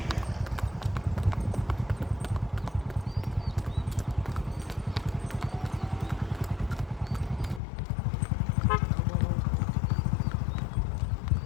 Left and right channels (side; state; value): right; drops out; at 7.6 s